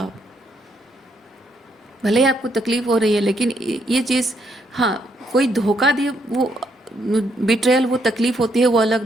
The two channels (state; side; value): normal; both; correlation 0.74